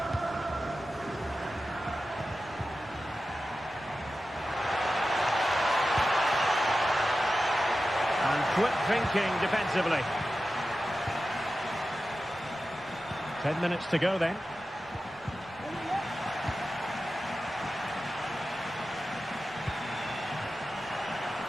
And quick thinking defensively. 10 minutes to go then.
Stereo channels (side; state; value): left; noise; rumble, 26 dB below the sound